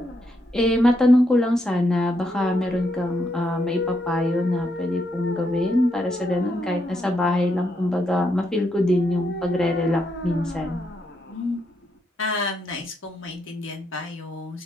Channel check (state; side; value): normal; both; correlation 0.79